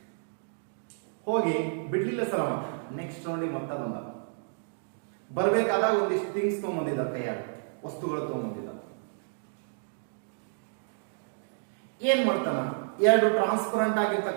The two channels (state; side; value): silent; left; digital silence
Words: ಹೋಗಿ ಬಿಡ್ಲಿಲ್ಲ ಸರ್ ಅವ. ನೆಕ್ಸ್ಟ್ ರೌಂಡಿಗೆ ಮತ್ತೆ ಬಂದ. ಬರ್ಬೇಕಾದಾಗ ಒಂದಿಷ್ಟು ಥಿಂಗ್ಸ್ ತಗೊಂಬಂದಿದ್ದ, ಕೈಯಾಗ ವಸ್ತುಗಳು ತಗೊಂಬಂದಿದ್ದ. ಏನ್ ಮಾಡ್ತಾನ, 2 ಟ್ರಾನ್ಸ್ಪರೆಂಟ್